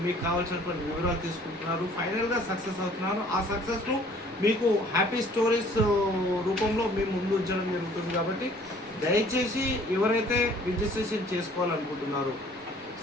మీకు కావాల్సినటువంటి వివరాలు తీసుకుంటున్నారు. ఫైనల్గా సక్సెస్ అవుతున్నారు. ఆ సక్సెస్ను మీకు హ్యాపీ స్టోరీస్ రూపంలో మేము ముందు ఉంచడం జరుగుతుంది. కాబట్టి దయచేసి ఎవరైతే రిజిస్ట్రేషన్ చేసుకోవాలనుకుంటున్నారో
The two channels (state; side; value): normal; both; correlation 0.55